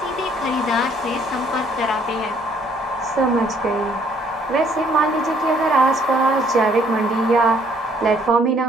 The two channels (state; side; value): normal; both; correlation 0.63